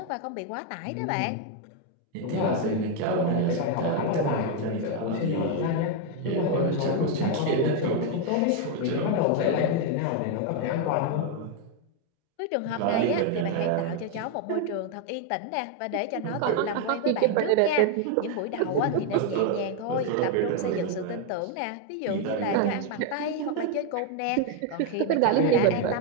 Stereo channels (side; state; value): both; different; correlation 0.01